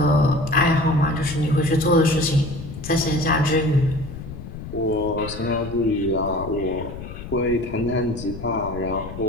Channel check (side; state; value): left; noise; rumble, 11 dB below the sound